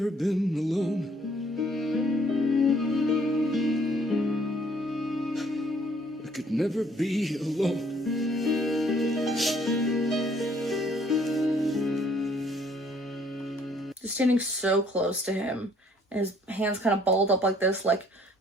been alone. I could never be alone. Just standing so close to him, and his hands kind of balled up like this, like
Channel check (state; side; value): normal; both; correlation 0.62